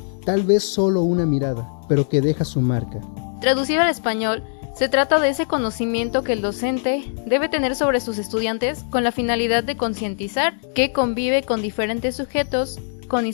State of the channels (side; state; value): right; silent; digital silence